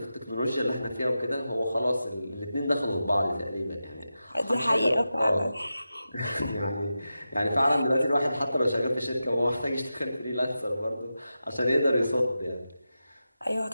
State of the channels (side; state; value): both; inverted; correlation -0.91